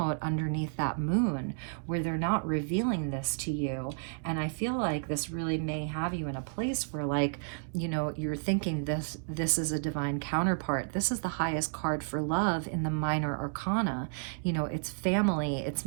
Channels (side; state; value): left; silent; digital silence